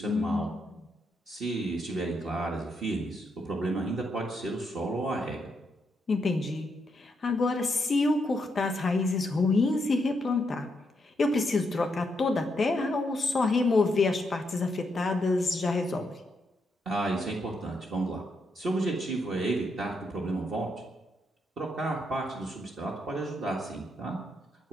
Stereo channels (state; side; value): normal; both; correlation 0.79